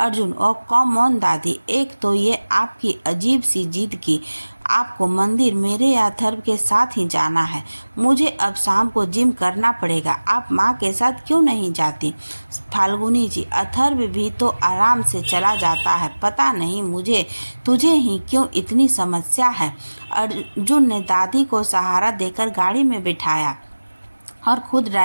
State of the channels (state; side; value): inverted; both; correlation -1.00